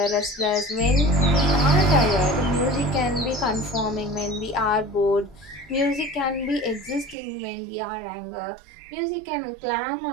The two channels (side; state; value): left; drops out; at 7.2 s